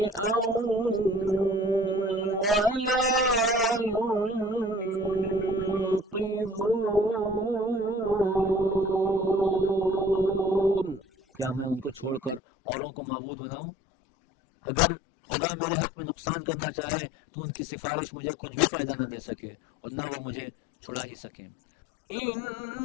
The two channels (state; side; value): drops out; right; at 12.4 s